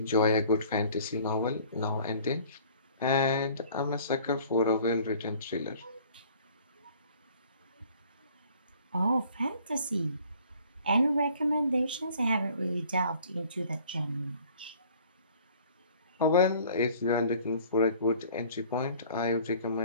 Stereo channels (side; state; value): both; inverted; correlation -0.53